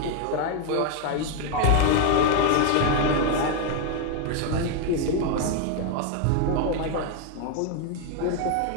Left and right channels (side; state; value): both; different; correlation 0.01